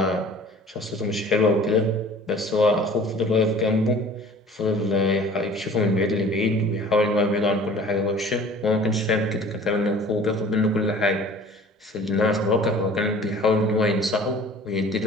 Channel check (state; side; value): normal; both; correlation 0.47